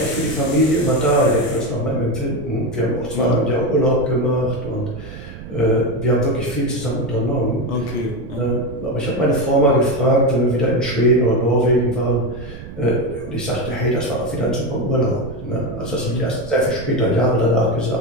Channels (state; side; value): noise; right; rumble, 13 dB below the sound